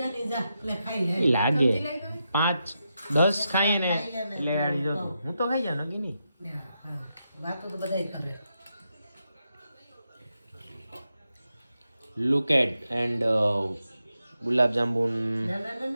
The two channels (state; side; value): inverted; both; correlation -0.86